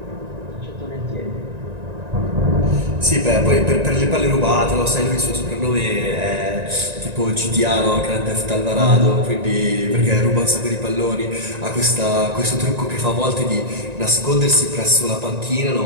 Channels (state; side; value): late; left; 1.9 ms